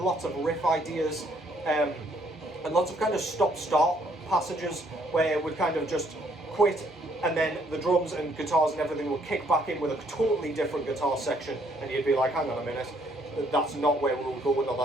lots of riff ideas, and lots of kind of stop-start passages where it would kind of just quit, and then the drums and guitars and everything would kick back in with a totally different guitar section, and you'd be like, hang on a minute, that's not where we were going, or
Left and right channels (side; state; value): both; normal; correlation 0.67